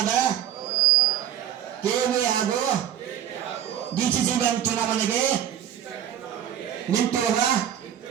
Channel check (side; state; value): left; quieter; 10.2 dB